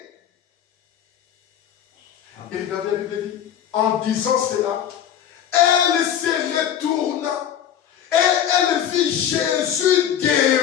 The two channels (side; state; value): right; quieter; 9.7 dB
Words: Et regardez, la Bible dit, en disant cela, elle se retourna et elle vit Jésus